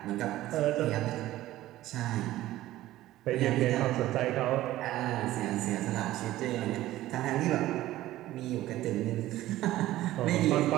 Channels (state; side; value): quieter; left; 15.3 dB